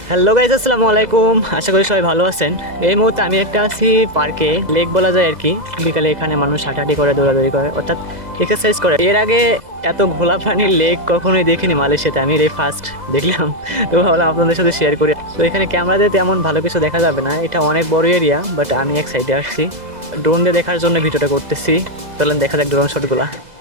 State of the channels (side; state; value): left; late; 2.0 ms